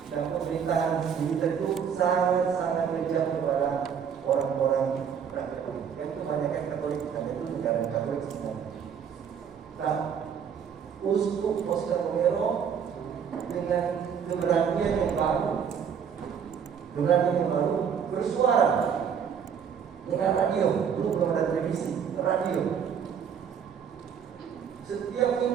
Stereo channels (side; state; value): left; quieter; 7.5 dB